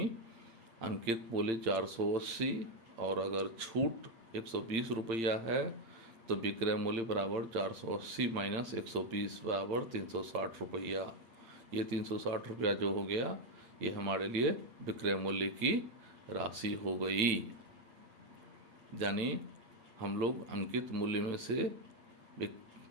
अंकित मूल्य 480 और अगर छूट 120 रुपया है तो विक्रय मूल्य बराबर 480 माइनस 120 बराबर 360 रुपया। ये 360 रुपया जो हो गया ये हमारे लिए विक्रय मूल्य की राशि हो गई। यानी हम लोग अंकित मूल्य में से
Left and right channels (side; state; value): left; late; 8.8 ms